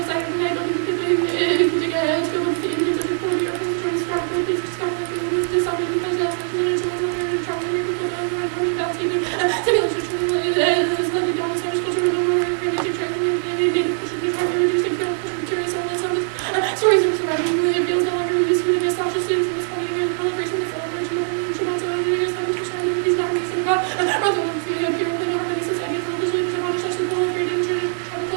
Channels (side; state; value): left; silent; 64 dB below the other